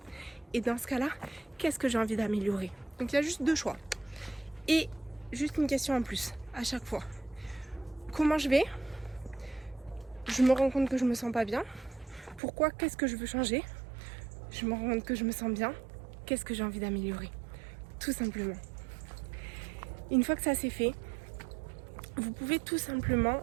et dans ce cas-là, qu'est-ce que j'ai envie d'améliorer? Donc il y a juste 2 choix. Et juste une question en plus, à chaque fois. Comment je vais? Je me rends compte que je me sens pas bien. Pourquoi? Qu'est-ce que je veux changer? Je me rends compte que je me sens bien. Qu'est-ce que j'ai envie d'améliorer? Tout simplement. Une fois que ça c'est fait, vous pouvez tout simplement,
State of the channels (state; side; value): drops out; left; at 12.4 s